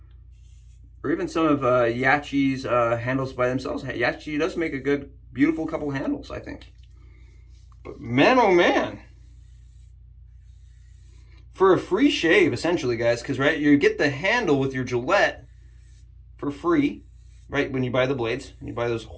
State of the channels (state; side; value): identical; both; correlation 1.00